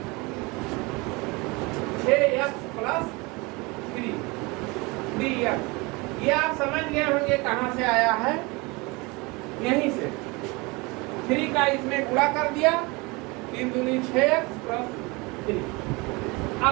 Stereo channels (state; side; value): quieter; left; 25.9 dB